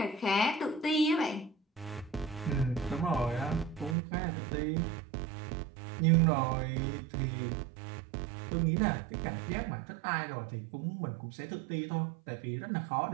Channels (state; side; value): drops out; left; at 4.0 s